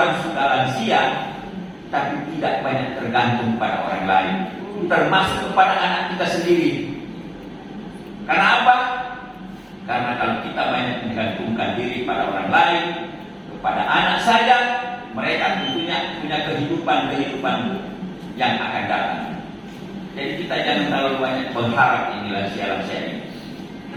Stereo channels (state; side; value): identical; both; correlation 1.00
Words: sudah lansia, tapi tidak banyak tergantung pada orang lain, termasuk kepada anak kita sendiri. Karena apa? Karena kalau kita banyak menggantungkan diri pada orang lain, kepada anak saja, mereka tentunya punya punya kehidupan yang akan datang. Jadi kita jangan terlalu banyak berharap ini lansia-lansia ini.